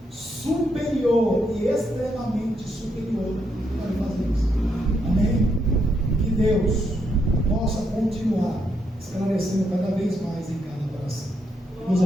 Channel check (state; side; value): normal; both; correlation 0.78